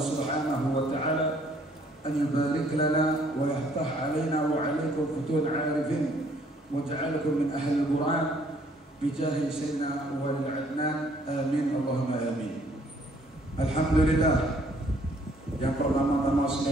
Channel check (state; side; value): normal; both; correlation 0.63